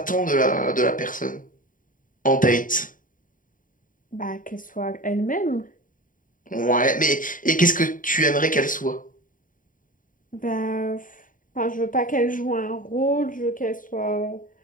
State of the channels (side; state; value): right; late; 0.39 ms